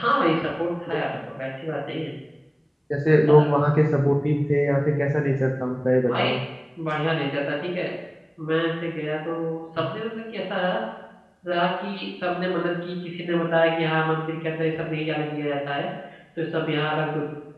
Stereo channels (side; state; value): both; identical; correlation 1.00